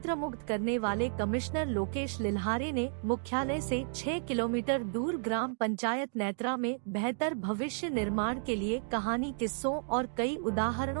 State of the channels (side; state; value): left; silent; digital silence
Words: करने वाले कमिश्नर लोकेश लिल्हारे ने मुख्यालय से 6 किलोमीटर दूर ग्राम पंचायत नेत्रा में बेहतर भविष्य निर्माण के लिए कहानी, किस्सों और कई